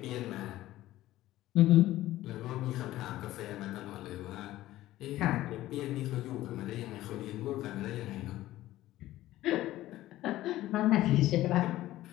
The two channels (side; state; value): right; quieter; 15.4 dB